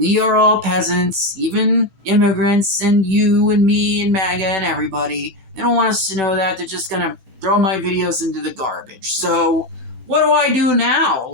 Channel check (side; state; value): left; late; 15 ms